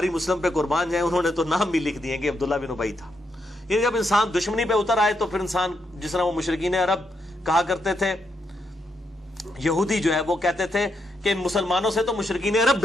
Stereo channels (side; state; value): both; normal; correlation 0.80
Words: مسلم پہ قربان جائیں، انہوں نے تو نام بھی لکھ دیے کہ عبداللہ بن ابی تھا. یہ جب انسان دشمنی پہ اتر آئے تو پھر انسان، جس طرح وہ مشرکین عرب کہا کرتے تھے، یہودی جو ہے وہ کہتے تھے کہ مسلمانوں سے تو مشرکین عرب